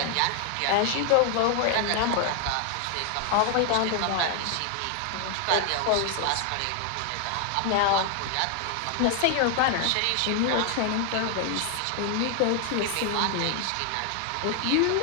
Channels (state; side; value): different; both; correlation 0.00